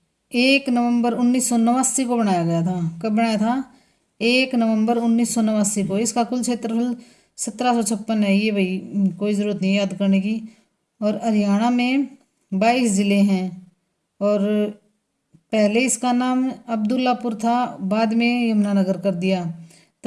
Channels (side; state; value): both; identical; correlation 1.00